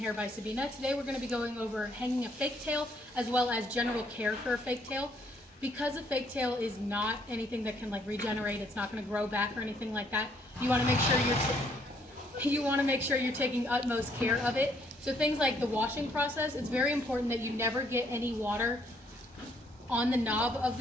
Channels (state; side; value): normal; both; correlation 0.68